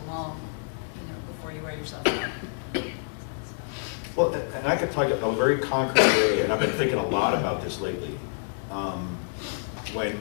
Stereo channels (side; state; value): right; silent; digital silence